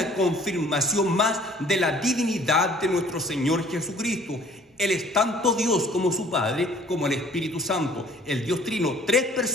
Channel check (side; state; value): both; normal; correlation 0.54